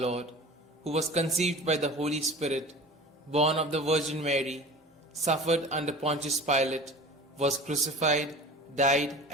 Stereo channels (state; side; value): normal; both; correlation 0.38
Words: who was conceived by the Holy Spirit, born of the Virgin Mary, suffered under Pontius Pilate, was crucified, died,